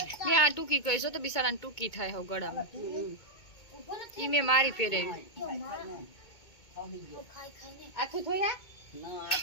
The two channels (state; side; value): late; right; 2.2 ms